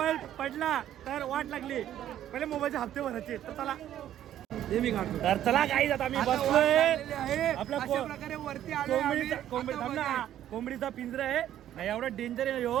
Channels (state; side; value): quieter; left; 11.6 dB